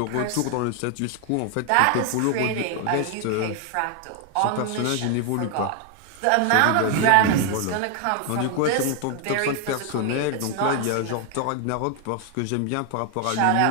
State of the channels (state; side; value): different; both; correlation 0.01